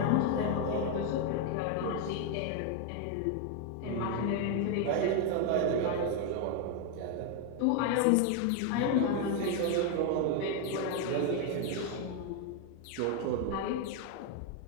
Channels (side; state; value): both; different; correlation 0.01